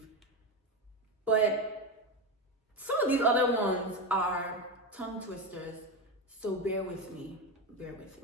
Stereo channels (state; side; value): normal; both; correlation 0.14